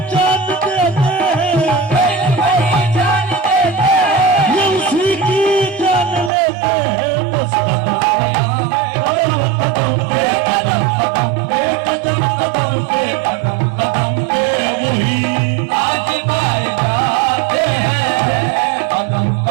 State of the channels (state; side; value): drops out; left; at 6.3 s